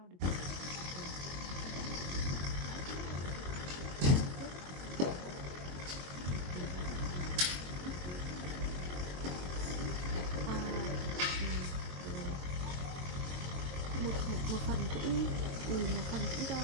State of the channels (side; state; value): left; late; 22 ms